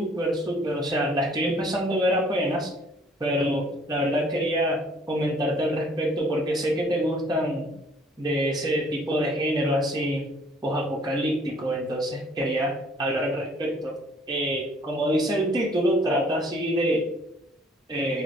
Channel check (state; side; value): normal; both; correlation 0.59